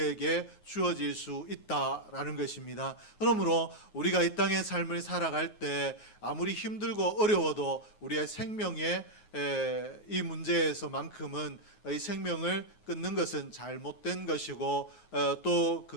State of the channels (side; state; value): right; late; 9.4 ms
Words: 주어질 수 있다라는 것입니다. 그러므로 우리가 이 땅의 삶을 살아갈 때 아무리 힘들고 어려워도 우리의 생명의 이 문제에서만큼은 이 생명을 끊는 것은 잘못된 것이고 또